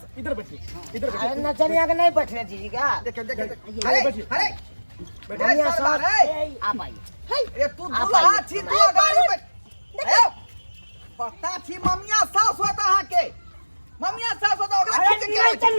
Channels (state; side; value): inverted; both; correlation -1.00